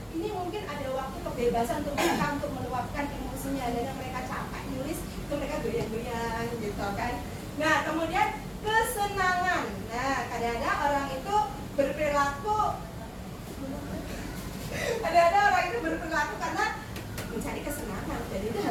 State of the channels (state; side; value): identical; both; correlation 1.00